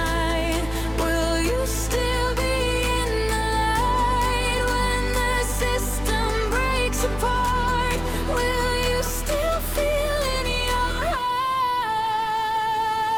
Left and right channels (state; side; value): noise; right; rumble, 15 dB below the sound